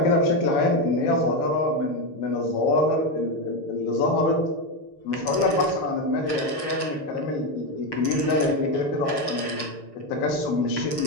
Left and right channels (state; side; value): late; right; 6.6 ms